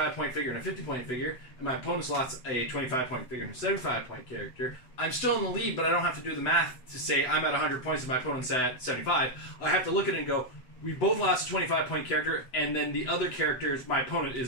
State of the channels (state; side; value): late; right; 8.0 ms